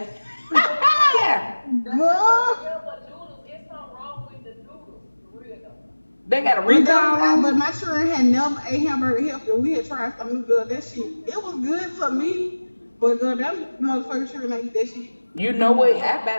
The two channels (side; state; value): both; inverted; correlation -1.00